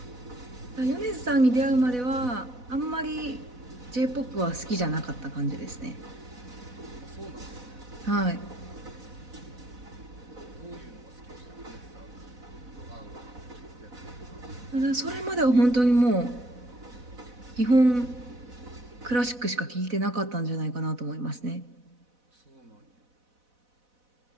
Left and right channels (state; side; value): late; left; 4.0 ms